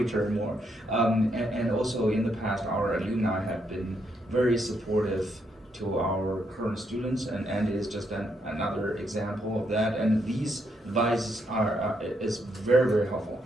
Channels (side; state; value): both; normal; correlation 0.77